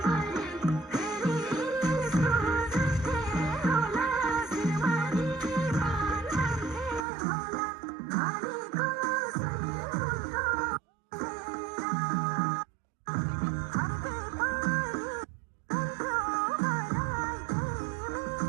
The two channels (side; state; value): left; drops out; at 7.1 s